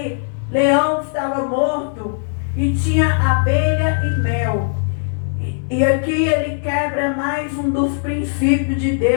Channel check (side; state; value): right; silent; 67 dB below the other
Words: leão que estava morto e tinha abelha e mel. E aqui ele quebra mais um dos princípios de